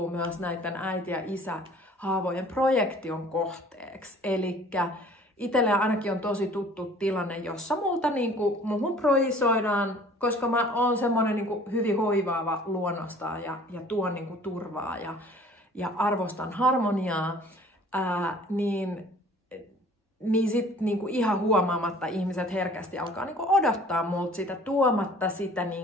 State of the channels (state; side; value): normal; both; correlation 0.51